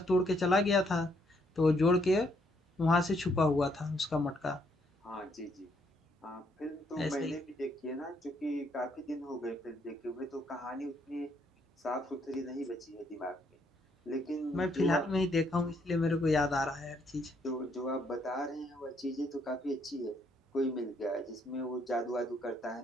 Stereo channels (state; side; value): normal; both; correlation 0.71